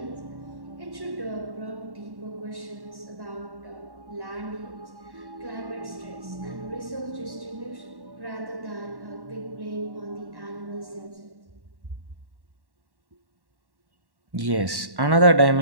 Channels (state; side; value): late; left; 1.1 ms